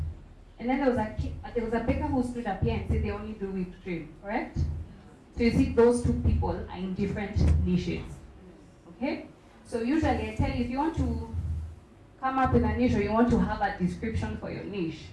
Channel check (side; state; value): both; identical; correlation 1.00